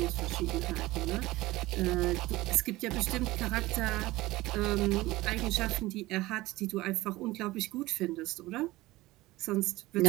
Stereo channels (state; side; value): quieter; left; 18.9 dB